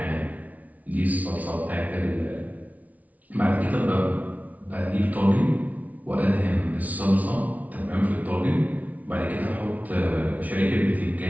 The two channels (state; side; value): late; left; 0.072 ms